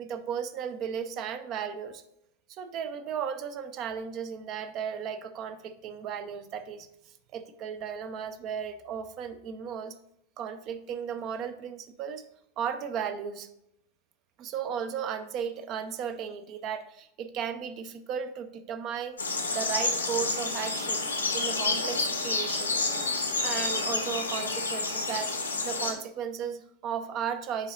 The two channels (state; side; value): normal; both; correlation -0.10